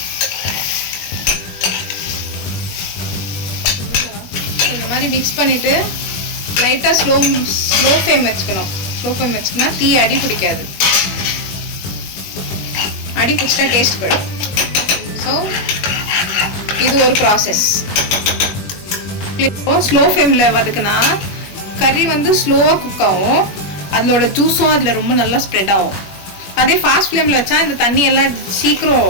இந்த மாதிரி மிக்ஸ் பண்ணிவிட்டு லைட்டாக ஸ்லோ ஃப்ளேம் வச்சுக்கணும். ஸ்லோ ஃப்ளேம் வச்சுக்கனா தீ அடி பிடிக்காது. அடி பிடிச்சிட்டா டேஸ்ட் போயிடும். ஸோ இது ஒரு ப்ராசஸ். ஸ்லோ ஃப்ளேமில் வதக்குனா கறி வந்து ஸ்லோவாக குக் ஆகும். அதோட ஜூஸும் அதில் ரொம்ப நல்லா ஸ்ப்ரெட் ஆகும். அதே ஃபாஸ்ட் ஃப்ளேமில் வச்சா இந்த தண்ணி எல்லாம் சீக்கிரம்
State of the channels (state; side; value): late; right; 21 ms